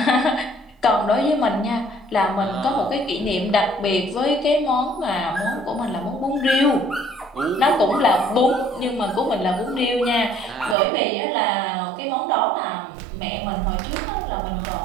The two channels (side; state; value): left; drops out; at 10.8 s